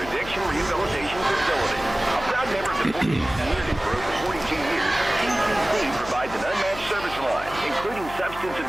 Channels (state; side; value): noise; left; hum, 14 dB below the sound